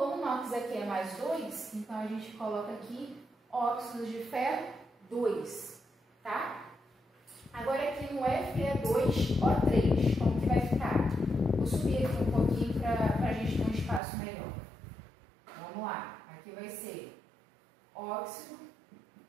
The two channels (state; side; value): drops out; left; at 14.0 s